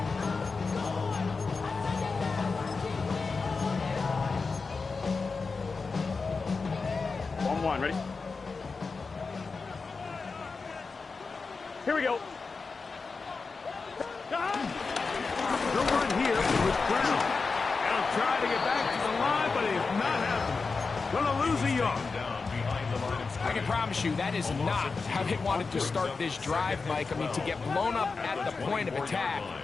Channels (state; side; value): quieter; right; 4.4 dB